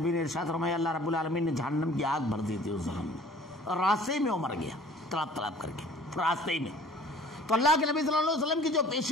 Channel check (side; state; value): both; normal; correlation 0.50